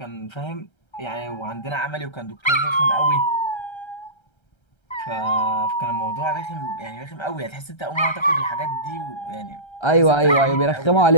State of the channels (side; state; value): right; late; 1.3 ms